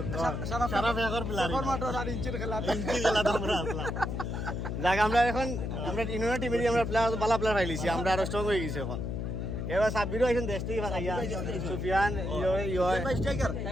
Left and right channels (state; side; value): noise; left; hum, 3 dB below the sound